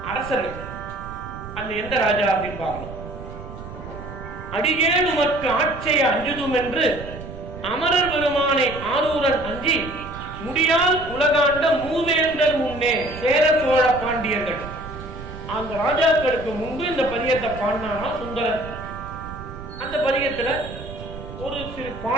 அரசர்கள், அந்த எந்த ராஜா அப்படின்னு பார்க்கணும். அடியேன் உமக்கு ஆட்சியை அஞ்சுதும் என்று அமரர் பெருமானை ஆரூரன் அஞ்சி முடியால் உலகாண்ட மூவேந்தர் முன்னே சேர சோழ பாண்டியர்கள். அந்த ராஜாக்களுக்கு முன்பு இந்த பதியத்தை பாடினானா சுந்தரர். அந்த பதியத்துல ஒரு சிறு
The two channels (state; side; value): noise; right; rumble, 12 dB below the sound